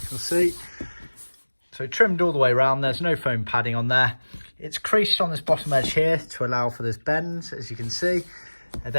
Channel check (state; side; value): inverted; both; correlation -1.00